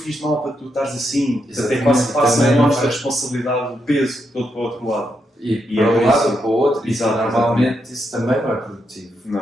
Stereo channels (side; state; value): both; normal; correlation 0.81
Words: de mal para tu estares assim? Até quase passa a nossa responsabilidade, o peso todo para o outro lado. E para um lado ou para o outro, e normalmente isso também não é produtivo,